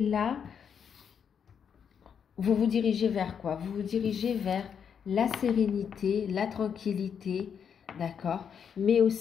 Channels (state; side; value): quieter; right; 7.4 dB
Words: là, vous vous dirigez vers quoi? Vous vous dirigez vers la sérénité, la tranquillité, d'accord? Mais